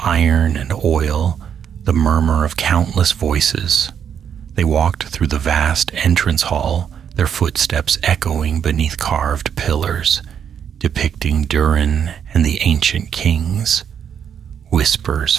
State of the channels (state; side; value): quieter; left; 8.3 dB